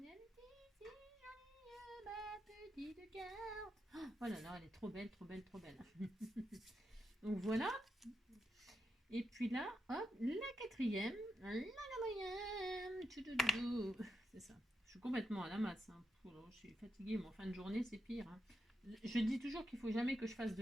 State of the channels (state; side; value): normal; both; correlation 0.85